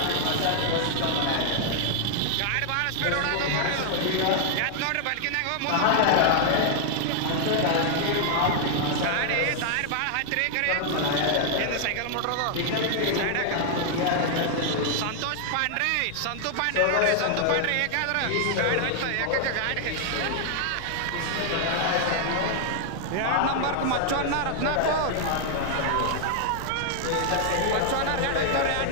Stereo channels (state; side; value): different; both; correlation 0.00